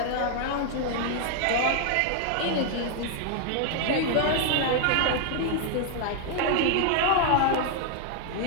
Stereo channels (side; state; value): both; different; correlation 0.00